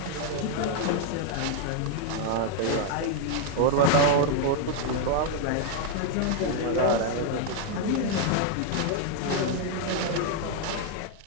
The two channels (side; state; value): both; different; correlation 0.00